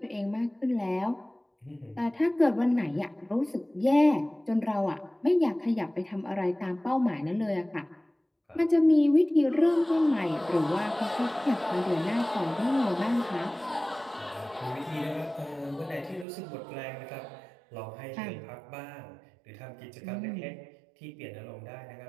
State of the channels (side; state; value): left; drops out; at 16.2 s